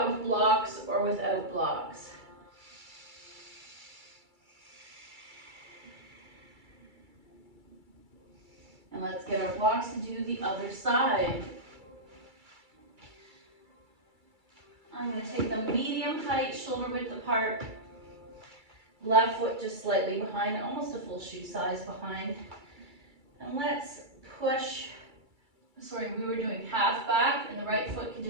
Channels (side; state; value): left; late; 2.3 ms